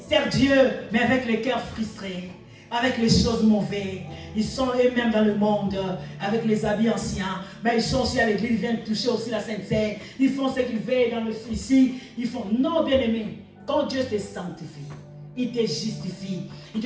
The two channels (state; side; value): identical; both; correlation 1.00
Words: servent Dieu, mais avec les cœurs frustrés, avec les choses mauvaises. Ils sont eux-mêmes dans le monde, avec les habits anciens. Mais ils sont aussi à l'église, ils viennent toucher aussi la sainteté. Ils font ce qu'ils veulent dans le ici. Ils font, non, bien-aimé, quand Dieu te sanctifie, il te justifie, il